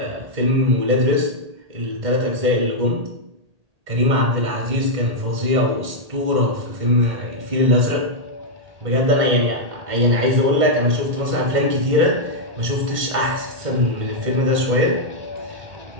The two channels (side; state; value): left; late; 1.8 ms